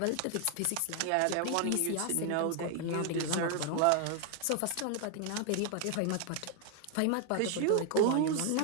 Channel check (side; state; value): both; different; correlation 0.00